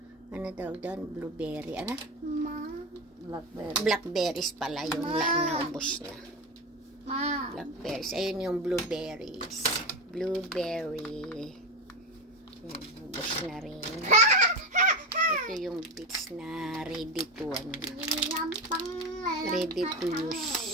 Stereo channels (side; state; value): both; normal; correlation 0.20